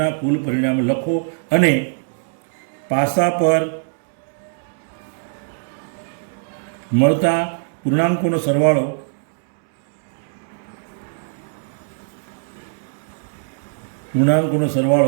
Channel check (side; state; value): left; silent; digital silence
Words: કુલ પરિણામો લખો અને પાસા પર મળતા પૂર્ણાંકોનો